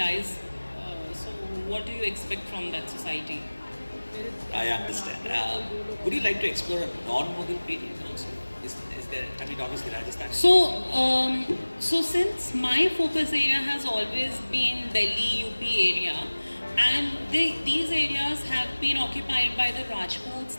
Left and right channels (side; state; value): both; inverted; correlation -1.00